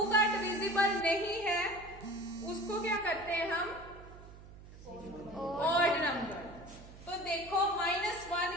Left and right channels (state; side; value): noise; right; hum, 17 dB below the sound